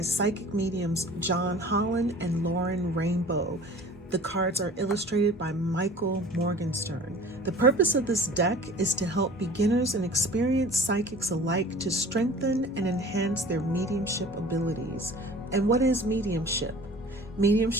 psychic mediums John Holland and Lauren Rainbow. The cards are illustrated by Michael Morgenstern. The purpose of this deck is to help beginners and experienced psychics alike to strengthen and enhance their mediumship abilities. And what is mediumship?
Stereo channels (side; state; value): both; normal; correlation 0.44